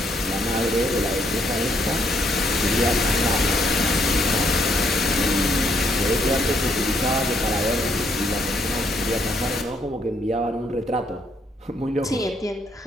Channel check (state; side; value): normal; both; correlation 0.71